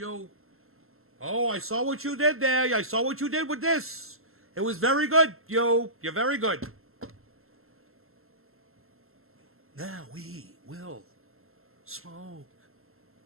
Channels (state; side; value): late; left; 0.62 ms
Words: Oh, I saw what you did there. I saw what you did with this. It was very good. Yo, you're very good. Now we will smoke